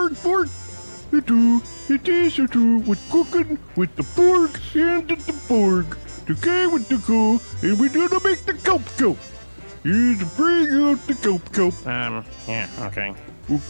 It is with cooking with the Borg and the Borg. The guy with the go, and we're gonna make the kelp. Here's to bring out the kelp. Yeah, okay.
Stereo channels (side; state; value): both; inverted; correlation -1.00